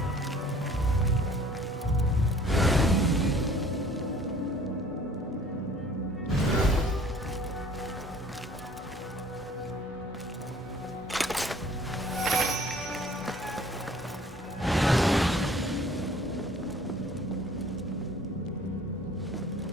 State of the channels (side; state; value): both; normal; correlation 0.53